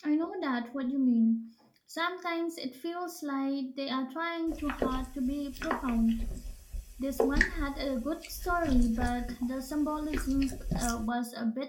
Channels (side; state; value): both; identical; correlation 1.00